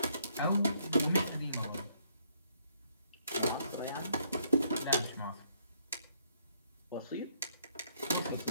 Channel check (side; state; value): both; inverted; correlation -0.70